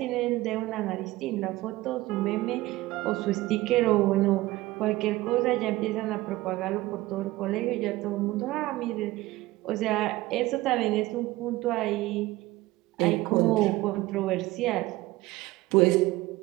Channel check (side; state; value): left; quieter; 18.4 dB